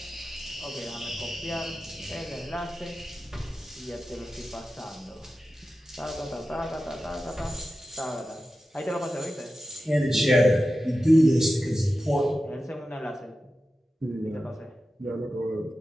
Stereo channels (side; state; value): both; normal; correlation 0.93